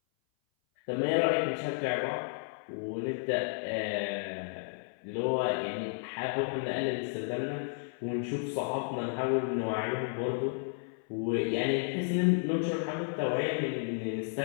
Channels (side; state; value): right; silent; 56 dB below the other